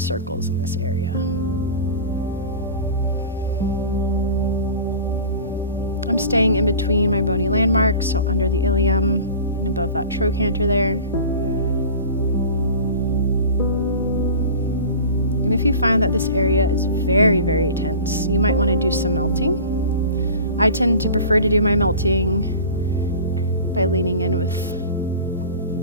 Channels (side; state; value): both; inverted; correlation -0.37